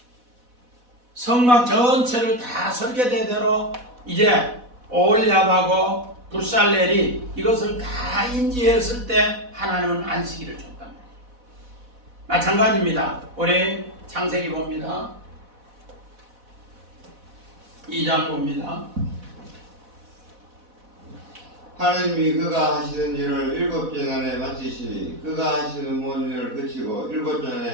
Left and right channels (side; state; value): left; late; 4.1 ms